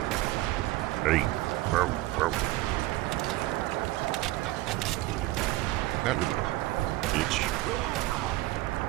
Hey. Whoa, whoa. That little bitch.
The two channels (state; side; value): quieter; left; 17.9 dB